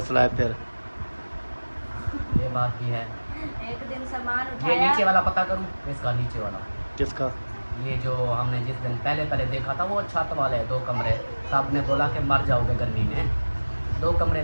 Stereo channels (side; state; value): both; inverted; correlation -1.00